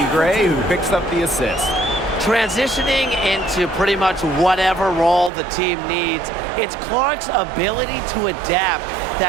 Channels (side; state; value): left; drops out; at 5.3 s